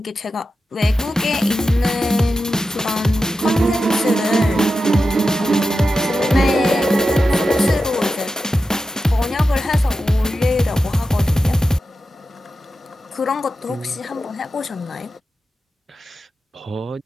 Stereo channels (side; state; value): both; normal; correlation 0.91